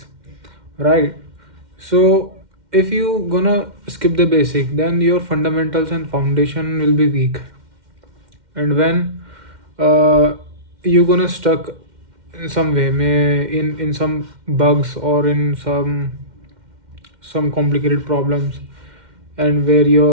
right? So if you gonna skip the basic, then your fundamentals and foundation will be weak. And when uh, you gonna stuck in some way, may in some bugs or in some complicated problems, and where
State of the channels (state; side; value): late; left; 2.1 ms